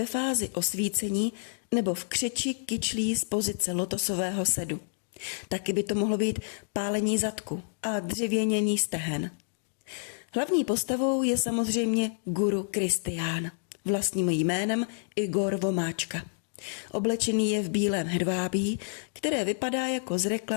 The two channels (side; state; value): right; silent; digital silence